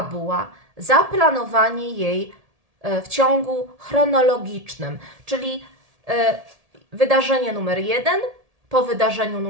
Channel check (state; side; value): late; left; 1.8 ms